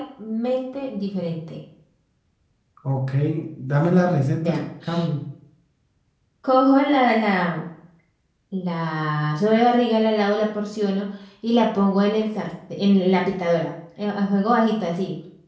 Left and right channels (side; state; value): both; identical; correlation 1.00